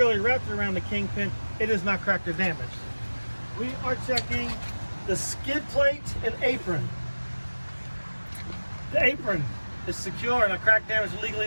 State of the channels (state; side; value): inverted; both; correlation -1.00